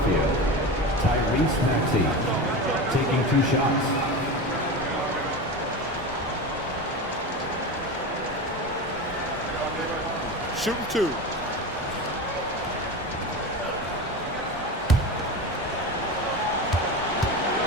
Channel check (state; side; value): normal; both; correlation 0.25